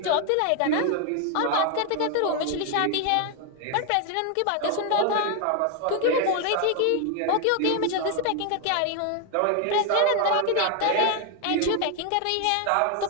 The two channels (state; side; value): different; both; correlation 0.01